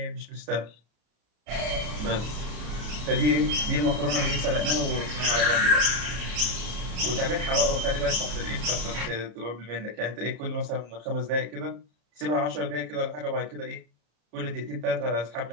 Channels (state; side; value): late; left; 34 ms